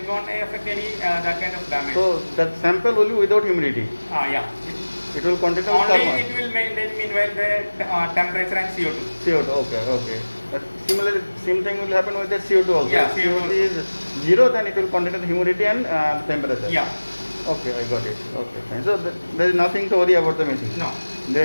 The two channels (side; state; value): both; inverted; correlation -1.00